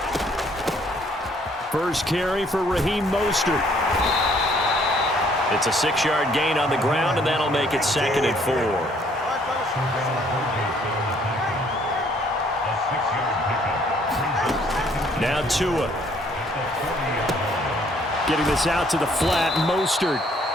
First carry for Raheem Mostert. It's a 6-yard gain on the ground, and that'll make it 2nd and 4. Now Tua. Getting this out to the flat, Mostert.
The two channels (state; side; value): normal; both; correlation 0.63